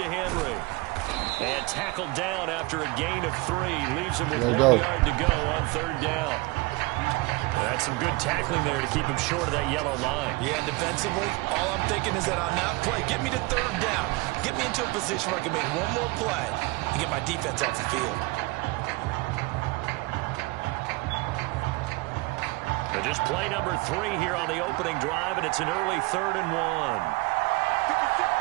Henry. And tackled down after a gain of 3. Leaves him with 1 yard to go on 3rd down. That's some good tackling there to keep him short of that yellow line. Yeah, defensively, all I'm thinking is that on that play, get me to 3rd down. Get me into a position where I can make one more play and get my defense off the field. So just play number 3 here on the opening drive, and it's an early 3rd and 1.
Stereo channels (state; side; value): quieter; left; 23.4 dB